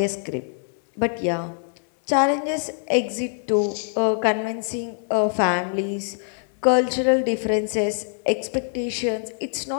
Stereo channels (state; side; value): silent; right; digital silence